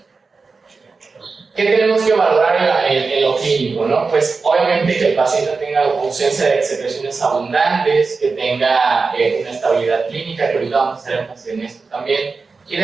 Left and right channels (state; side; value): quieter; left; 4.4 dB